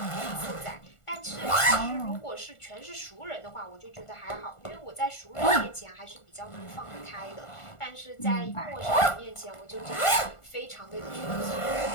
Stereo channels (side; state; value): right; late; 1.4 ms